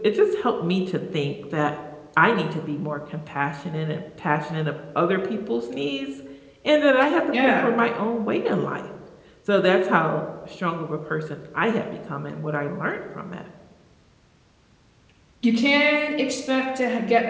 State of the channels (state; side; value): identical; both; correlation 1.00